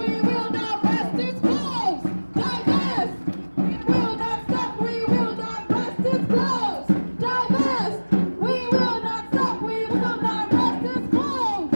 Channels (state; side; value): inverted; both; correlation -1.00